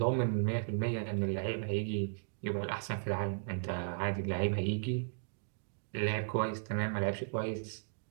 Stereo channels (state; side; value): silent; left; digital silence